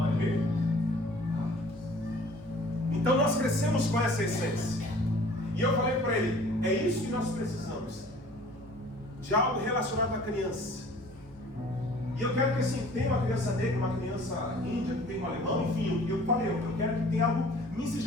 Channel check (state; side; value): noise; right; hum, 23 dB below the sound